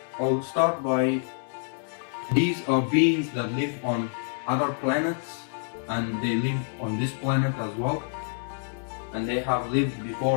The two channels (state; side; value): silent; right; 57 dB below the other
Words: I'll start by, these are beings that live on other planets, and they live on this planet as well, and they have lived